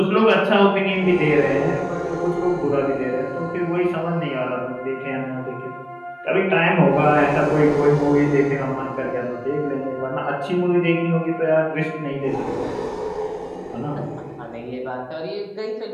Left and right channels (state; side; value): identical; both; correlation 1.00